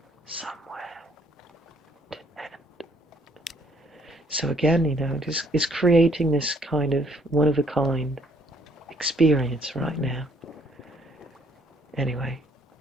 So again, it's creating this kind of one-of-a-kind experience right now. Anyway,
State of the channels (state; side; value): normal; both; correlation 0.64